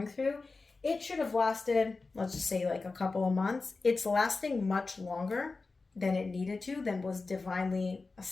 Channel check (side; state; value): right; quieter; 3.9 dB